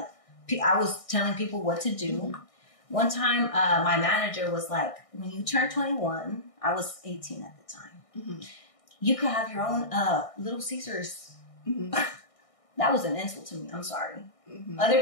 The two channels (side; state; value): right; late; 1.6 ms